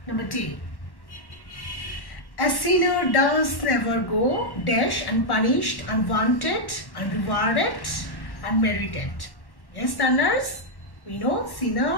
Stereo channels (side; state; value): right; late; 1.1 ms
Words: Number 2. A sinner does never go dash unpunished, unwanted, unrewarded, unmerited. Yes, learners, we know